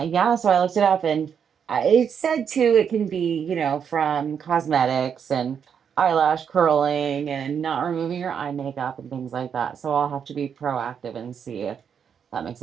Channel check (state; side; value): quieter; left; 7.5 dB